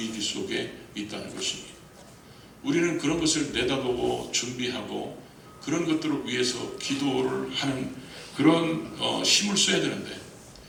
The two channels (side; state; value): both; identical; correlation 1.00